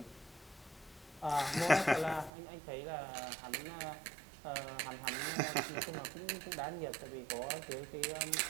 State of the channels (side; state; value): left; drops out; at 2.3 s